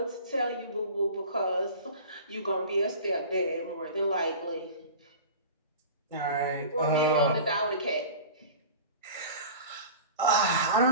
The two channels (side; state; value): both; inverted; correlation -0.37